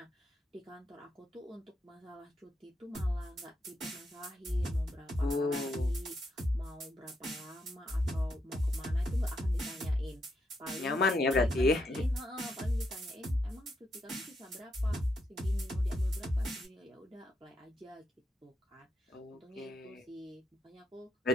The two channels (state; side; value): normal; both; correlation 0.80